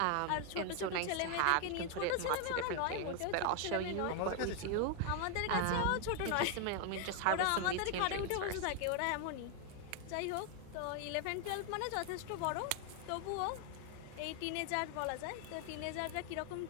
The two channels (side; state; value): both; different; correlation 0.01